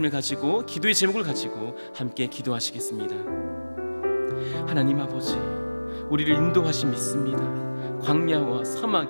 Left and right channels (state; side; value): inverted; both; correlation -1.00